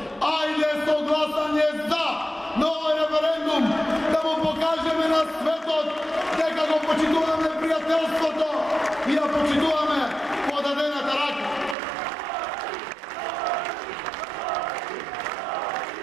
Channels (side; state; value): left; drops out; at 11.8 s